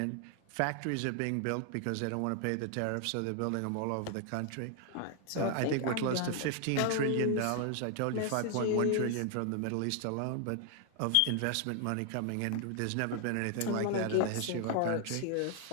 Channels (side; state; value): both; different; correlation 0.00